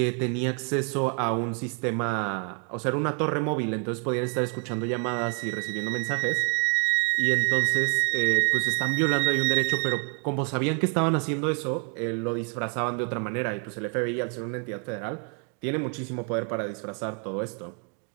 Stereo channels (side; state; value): left; quieter; 40.0 dB